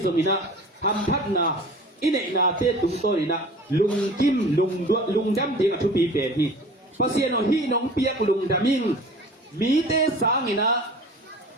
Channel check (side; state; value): both; normal; correlation 0.42